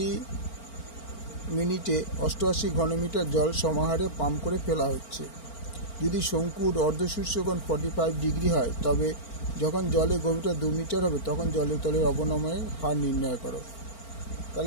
88 ঘনমিটার জল সমাহারে পাম্প করে ফেলা হচ্ছে। যদি শঙ্কুর অর্ধশীর্ষকোণ 45 ডিগ্রি হয়, তবে যখন জলের গভীরতা 2 মিটার হবে তখন জলের তলের অবনমনের হার নির্ণয় করো।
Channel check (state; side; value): late; right; 4.4 ms